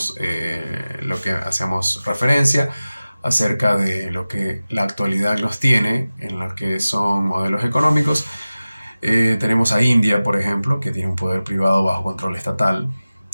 lo que hacemos referencia acerca de lo que la actualidad nos tiene en lo que son modelos económicos, tenemos a India, por ejemplo, que tiene un poder privado bajo control estatal.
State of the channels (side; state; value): both; inverted; correlation -0.96